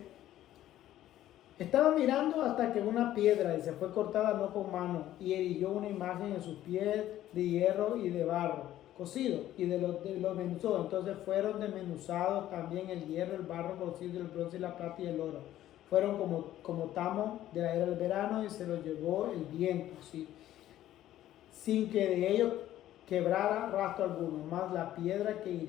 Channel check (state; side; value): quieter; right; 13.2 dB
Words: estaba mirando hasta que una piedra, y se fue cortada no con mano, y eriguió una imagen en sus pies de hierro y de barro, cocido y de los menuzó. Entonces fueron desmenuzados también el hierro, el barro cocido, el bronce y la plata y el oro. Fueron como tamo de la era del verano y se los llevó el viento, ¿sí? Sin que de ellos quebrara rastro alguno, más la piedra que